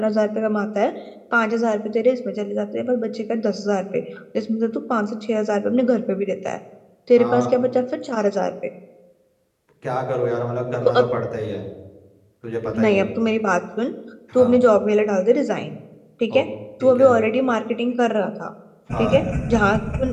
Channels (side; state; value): both; identical; correlation 1.00